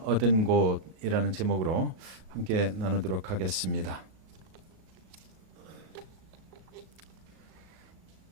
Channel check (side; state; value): left; late; 37 ms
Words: 얻은 곳이라는 제목으로 함께 나누도록 하겠습니다.